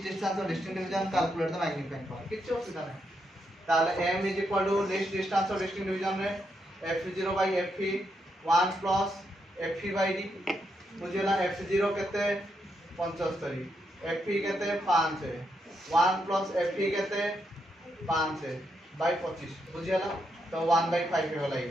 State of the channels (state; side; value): normal; both; correlation 0.81